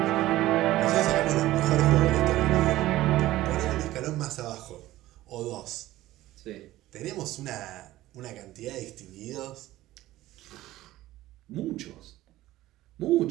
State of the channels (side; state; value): left; quieter; 15.9 dB